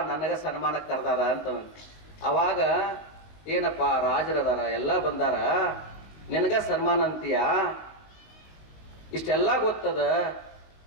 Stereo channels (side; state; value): right; late; 19 ms